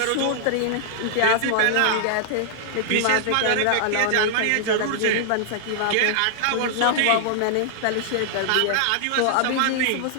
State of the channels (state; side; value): different; both; correlation -0.01